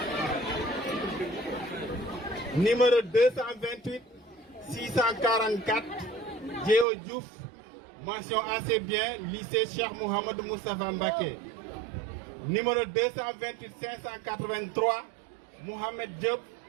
numéro 228, 644, Djeo Diouf, mention assez bien, lycée Cheikh Mohamed Moustapha Mbaké. Numéro 228, 583, Mohamed Diop,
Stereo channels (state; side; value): drops out; left; at 6.9 s